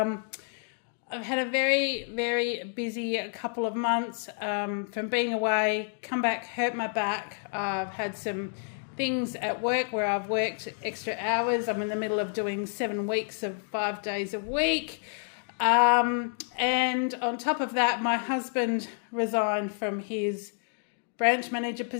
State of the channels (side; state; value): right; silent; 58 dB below the other